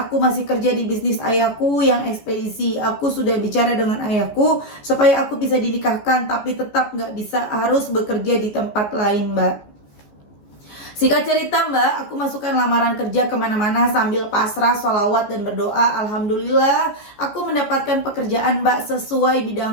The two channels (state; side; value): late; right; 14 ms